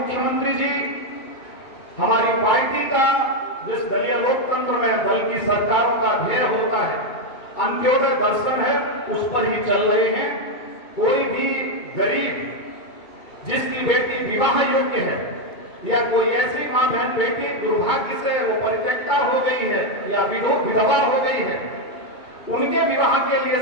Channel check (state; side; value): late; right; 2.2 ms